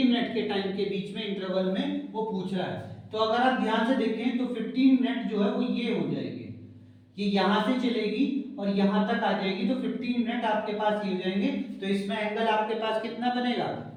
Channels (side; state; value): both; identical; correlation 1.00